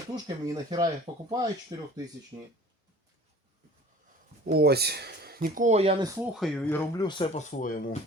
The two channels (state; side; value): normal; both; correlation 0.45